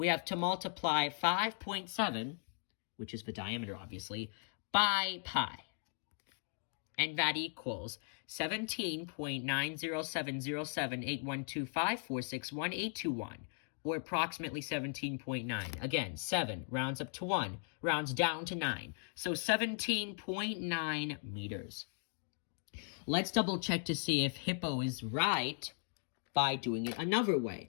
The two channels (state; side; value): silent; right; 53 dB below the other